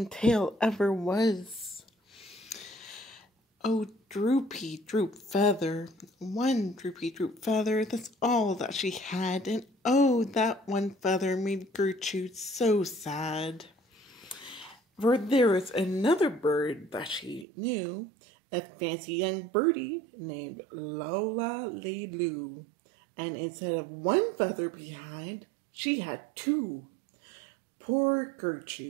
tail ever was. Oh, droopy droop feather, one droopy droop feather, that's all that she had, and oh, that one feather made Gertrude so sad. For there was another bird that she knew, a fancy young birdie named Lola Lee Loo, and instead of one feather behind, she had two. Poor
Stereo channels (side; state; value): left; drops out; at 17.4 s